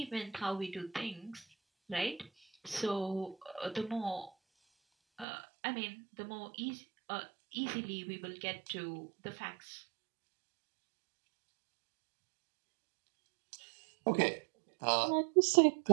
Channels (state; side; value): drops out; left; at 5.2 s